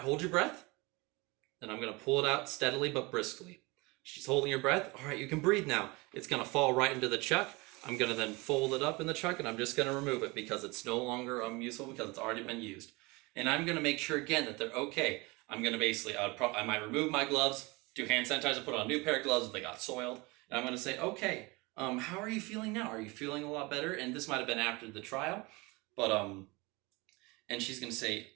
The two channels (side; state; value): left; quieter; 25.1 dB